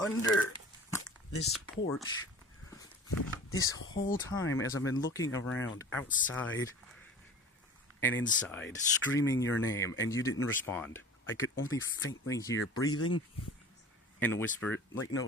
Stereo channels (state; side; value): normal; both; correlation 0.40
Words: this porch this whole time as I've been looking around outside and inside, screaming your name, and you didn't respond. I could only faintly hear breathing and whisper, like,